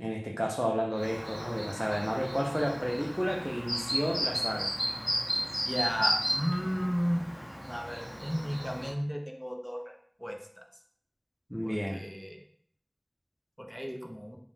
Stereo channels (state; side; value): identical; both; correlation 1.00